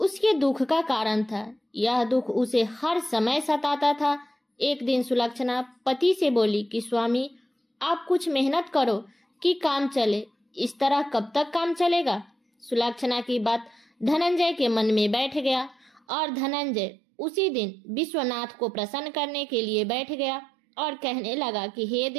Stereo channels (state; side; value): drops out; left; at 16.0 s